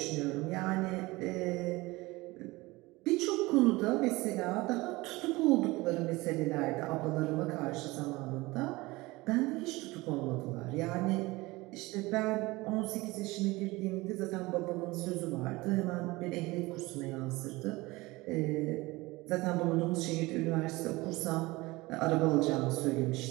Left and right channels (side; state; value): left; quieter; 21.5 dB